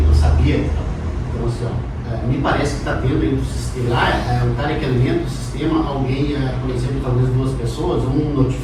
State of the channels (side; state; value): both; identical; correlation 1.00